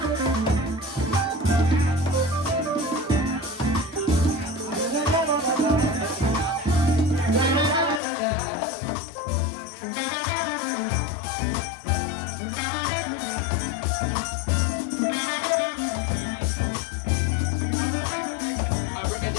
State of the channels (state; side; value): drops out; right; at 8.0 s